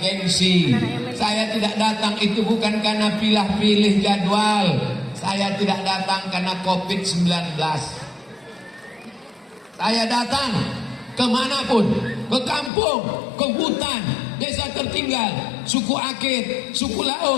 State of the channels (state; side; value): drops out; right; at 12.7 s